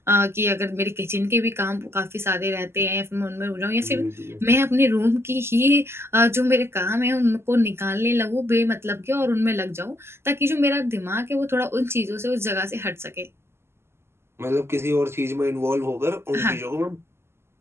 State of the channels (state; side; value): late; left; 0.12 ms